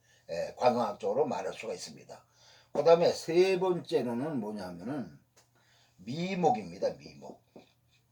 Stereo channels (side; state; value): both; identical; correlation 1.00